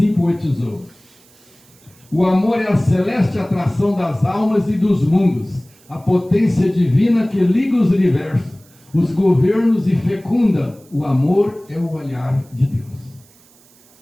poetizou. O amor é a celeste atração das almas e dos mundos, a potência divina que liga os universos, os governos e fecunda. O amor é o olhar de Deus.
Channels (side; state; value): right; noise; hiss, 29 dB below the sound